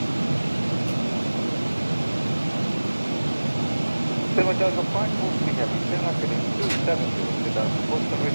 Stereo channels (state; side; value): inverted; both; correlation -1.00